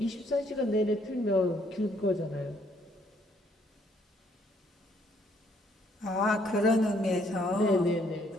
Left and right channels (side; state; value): both; normal; correlation 0.67